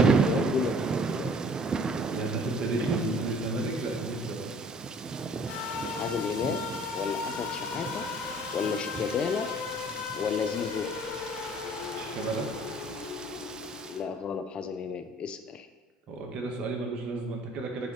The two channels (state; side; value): normal; both; correlation 0.53